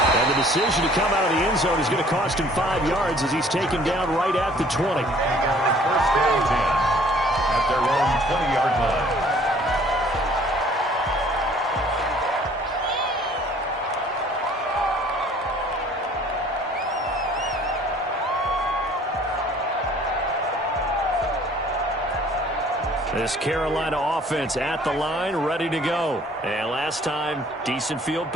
And the decision to come out of the end zone is going to cost him 5 yards as he's taken down right at the 20. First down 10 at their own 20-yard line. This Carolina offense at the line, ready to go. And last time, decent field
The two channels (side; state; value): both; normal; correlation 0.55